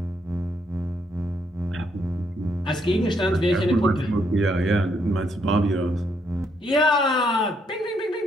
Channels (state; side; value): normal; both; correlation 0.74